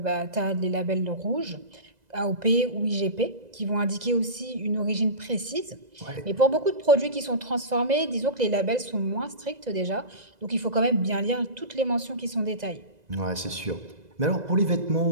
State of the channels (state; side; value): late; left; 2.0 ms